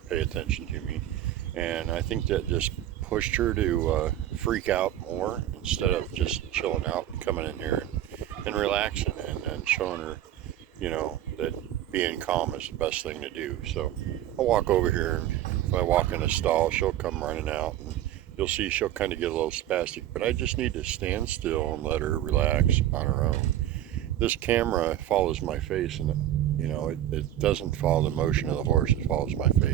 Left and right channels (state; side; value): quieter; left; 12.3 dB